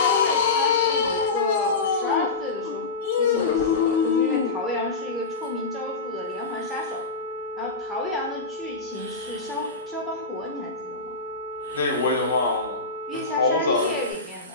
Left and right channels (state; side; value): quieter; right; 3.9 dB